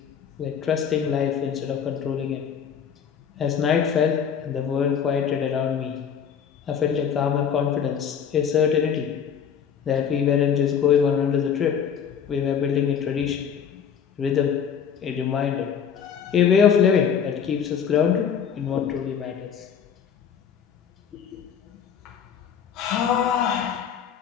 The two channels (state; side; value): quieter; right; 7.7 dB